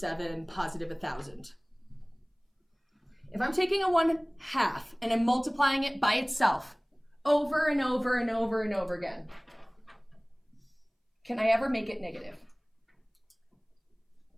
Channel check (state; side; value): identical; both; correlation 1.00